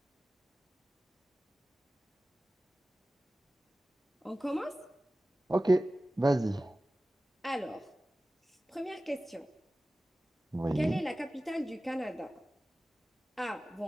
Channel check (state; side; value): normal; both; correlation 0.96